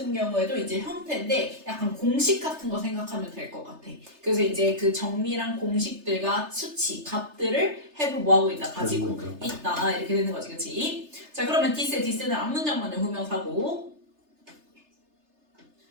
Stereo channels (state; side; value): late; left; 3.3 ms